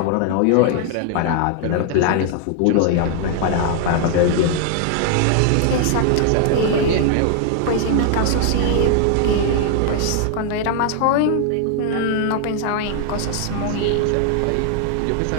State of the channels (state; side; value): different; both; correlation 0.00